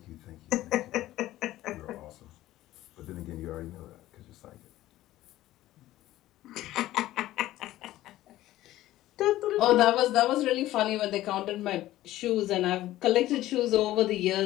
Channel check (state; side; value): quieter; right; 15.2 dB